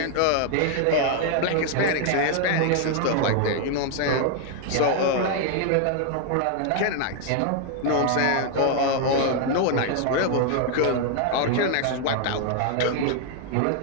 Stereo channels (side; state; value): both; different; correlation 0.00